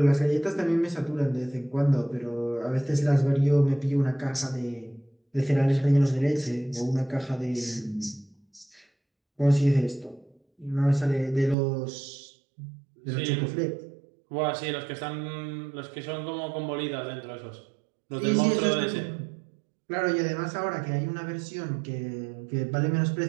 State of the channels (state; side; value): drops out; left; at 11.6 s